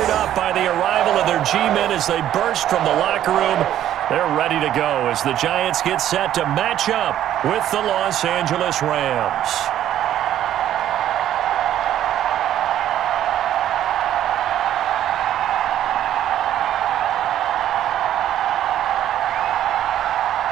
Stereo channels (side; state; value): left; quieter; 11.6 dB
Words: up by the arrival of their G-men as they burst from the locker room. They're ready to go as the Giants get set to match up with the Los Angeles Rams.